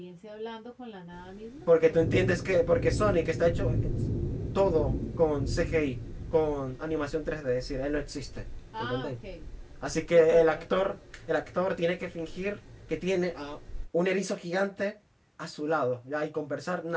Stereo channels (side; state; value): both; identical; correlation 1.00